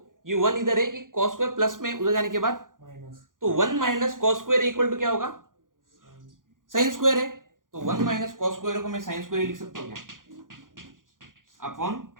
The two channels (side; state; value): left; late; 0.89 ms